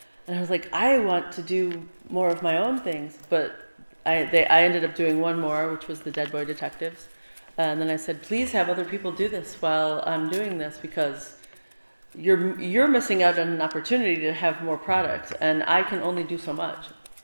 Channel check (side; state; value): both; inverted; correlation -1.00